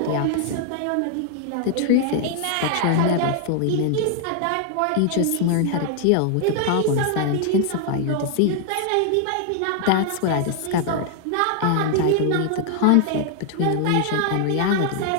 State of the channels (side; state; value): both; different; correlation 0.00